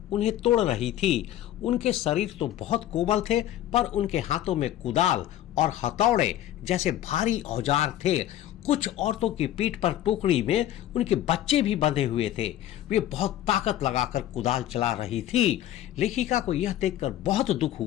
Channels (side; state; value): right; quieter; 12.6 dB